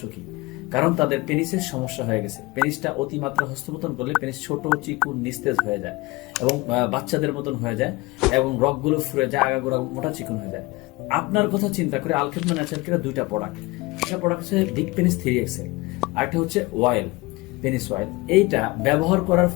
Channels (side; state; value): right; quieter; 22.4 dB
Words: কারণ তাদের পেনিসের সমস্যা হয়ে গেছে। পেনিসটা অতিমাত্রা হস্তমৈথুন করলে পেনিস ছোট, চিকুন, নিস্তেজ হয়ে যায় এবং বাচ্চাদের মতন হয়ে যায় এবং রগগুলো ফুরে যায়, আগাগোড়া মোটা চিকুন হয়ে যায়। আপনার কথা চিন্তা করে আলখেদমা ন্যাচারাল কেয়ার দুইটা প্রোডাক্ট, একটা প্রোডাক্ট হচ্ছে ডিক পেনিস 3XL, আরেকটা হচ্ছে অয়েল, পেনিস অয়েল। এইটা ব্যবহার করার